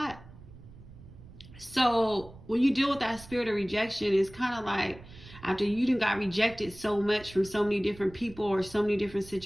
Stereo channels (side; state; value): right; noise; rumble, 19 dB below the sound